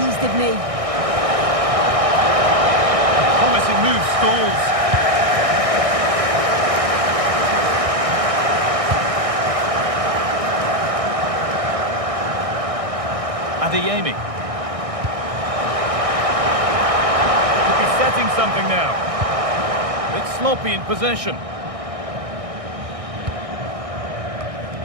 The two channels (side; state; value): left; late; 1.6 ms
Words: didn't he? Promising move stalls. Adeyemi. Could be setting something now. It's sloppy in possession.